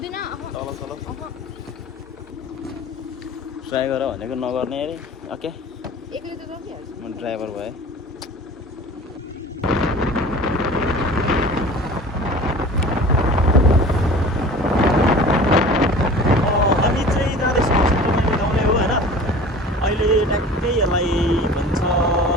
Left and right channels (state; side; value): normal; both; correlation 0.41